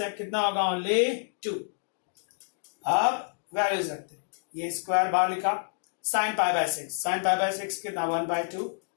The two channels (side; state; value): right; silent; digital silence